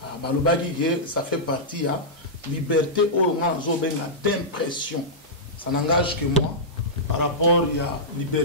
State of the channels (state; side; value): normal; both; correlation -0.12